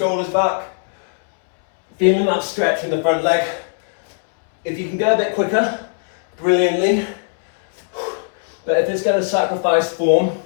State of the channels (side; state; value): right; silent; 67 dB below the other